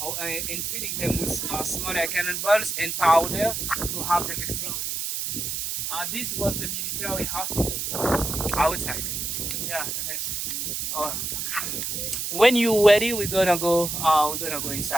filling them with smaller cannonballs and powder to have them exploded. This was the military hospital outside. Yeah. Uh, when you're ready, we're gonna go. We're gonna go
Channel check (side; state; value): right; noise; hiss, 3 dB below the sound